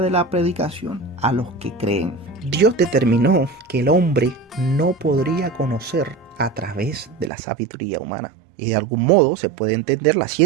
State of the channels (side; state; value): left; drops out; at 7.3 s